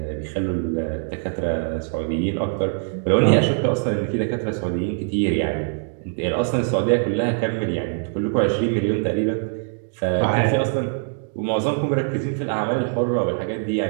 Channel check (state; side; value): silent; left; 61 dB below the other